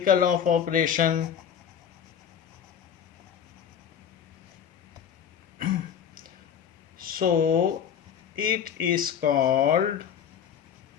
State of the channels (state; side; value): quieter; right; 8.4 dB